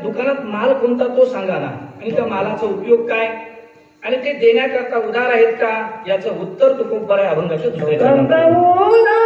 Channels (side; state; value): both; identical; correlation 1.00